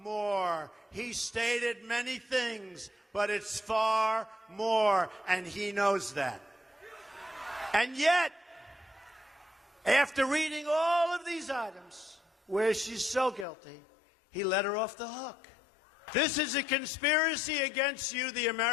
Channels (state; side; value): drops out; right; at 13.5 s